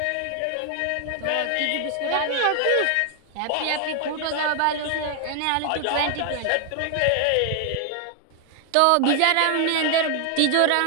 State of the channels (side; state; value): both; different; correlation 0.00